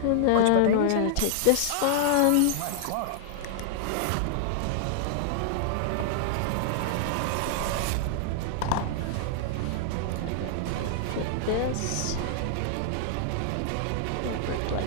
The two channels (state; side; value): different; both; correlation -0.01